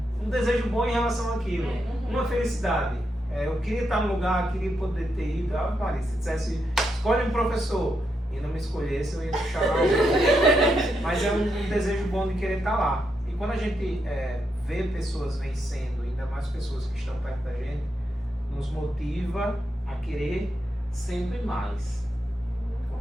desejo bom em relação àquilo. Uma felicidade. Eu queria estar no lugar, queria poder ter ido. Maria, se dissesse, escolhe um professor e não me escolhesse, eu ia puxar lá. Mas é um desejo bom de querer estar lá. E quando a gente vê pessoas vencendo, ainda mais pessoas que estão perto da gente, nos motiva a querer sempre mais.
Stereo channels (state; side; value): normal; both; correlation 0.82